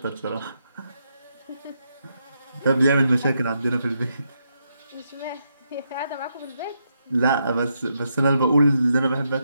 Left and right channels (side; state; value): both; inverted; correlation -0.81